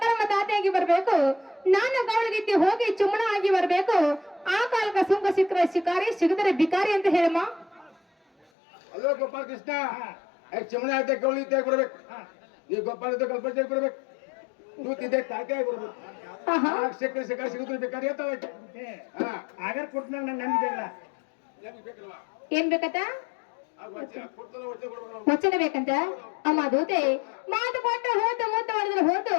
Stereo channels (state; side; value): drops out; right; at 8.5 s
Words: ತಾತೆಯಾಗಿ ಬರ್ಬೇಕು, ನಾನು ಗೌಳಗಿತ್ತಿ ಹೋಗಿ ಚುಮ್ಮಣ ಆಗಿ ಬರ್ಬೇಕು. ಆ ಕಾಲಕ ಸುಂಕ ಸಿಕ್ಕರೆ ಶಿಕಾರಿ, ಸಿಗದರೆ ಬಿಕಾರಿ ಅಂತ ಹೇಳಮ್ಮ. ಅಲ್ಲೋ ಗೋಪಾಲ ಕೃಷ್ಣ, ಚಮಣೆ ಆಯ್ತಾ ಗೌಳಿ ಇದ್ದಾಗ ಬರ್ಬೇಕು, ನೀವು ಗೋಪಾಲ ಇದ್ದ ಗಲ್ಪಜಾಗಿ ಬರ್ಬೇಕು, ದೂತಿದ್ದೆ ತಾತೆ ಆಗಿ ಬರ್ಬೇಕು. ಸಿಕ್ಕರೆ ಸಿಕ್ಕ ಸಿಗುದ್ರೆ ಬೇಕಾದ್ರೆ ಆಗಾರ ಕೊಟ್ಟನಾಗ ನಾನು ನಂಬಿದೆಲ್ಲ ಏನ್ ಬೇಕತ್ತ ವಚನ ಬೇಕಂತ ಅಮ್ಮ ದೂತೆ. ಮಾತು ಕೊಟ್ಟ ಹೋತು ಮೂತ ಮಾಡಿದ್ರೆ ಹೋತು,